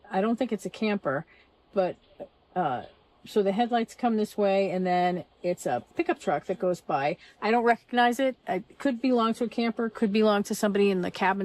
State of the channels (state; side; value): identical; both; correlation 1.00